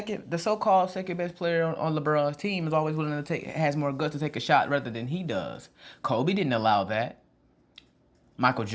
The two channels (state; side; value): identical; both; correlation 1.00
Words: so-called second best player on LeBron's team is always willing to has more guts to take a shot rather than he does. Kobe didn't allow that. Michael